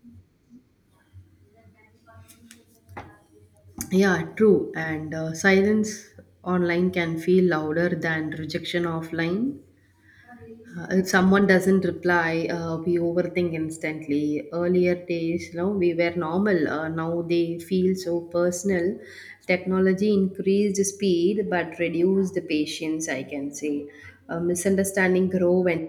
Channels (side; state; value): both; identical; correlation 1.00